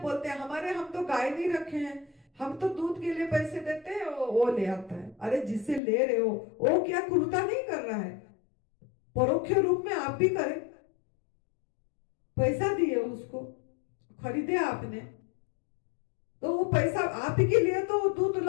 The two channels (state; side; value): drops out; right; at 5.8 s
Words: हैं हम तो गाय नहीं रखे हैं, हम तो दूध के लिए पैसे देते हैं, वो ले आता है। अरे जिससे ले रहे हो वो क्या क्रूरता नहीं कर रहा है? परोक्ष रूप में आप भी करें, पैसा दिए उसको, खरीदे आपने, तो वो पैसा आप ही के लिए तो वो दूध